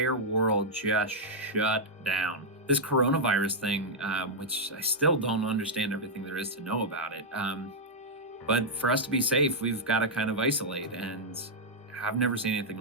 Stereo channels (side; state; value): both; normal; correlation -0.04